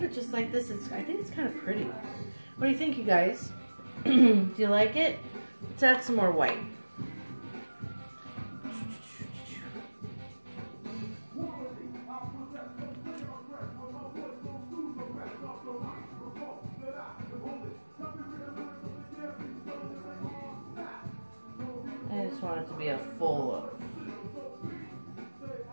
it just like this. I think it's kind of pretty. What do you think, you guys? Do you like it? Let's add some more white. I just want it to be a full loaf.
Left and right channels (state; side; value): inverted; both; correlation -1.00